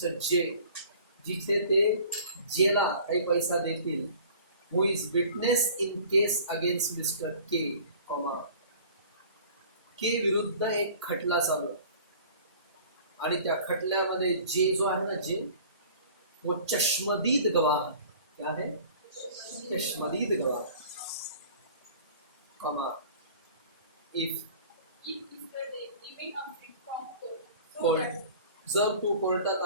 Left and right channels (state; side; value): inverted; both; correlation -0.47